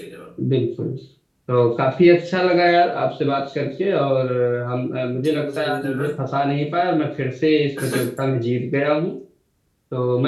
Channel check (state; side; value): identical; both; correlation 1.00